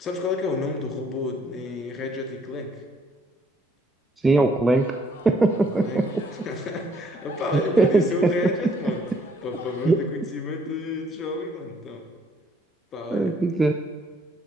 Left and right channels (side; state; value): both; normal; correlation 0.66